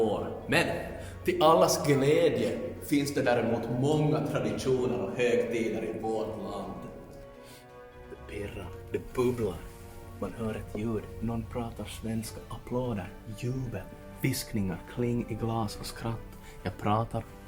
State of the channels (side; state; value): both; identical; correlation 1.00